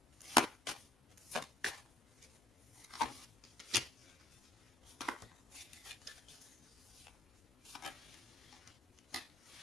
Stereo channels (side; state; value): both; normal; correlation 0.63